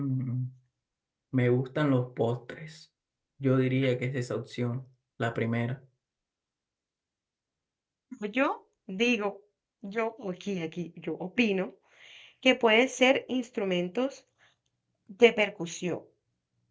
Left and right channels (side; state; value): both; identical; correlation 1.00